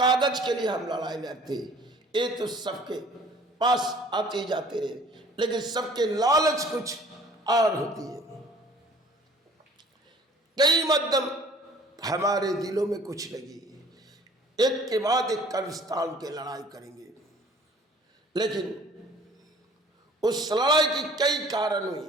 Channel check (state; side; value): normal; both; correlation 0.52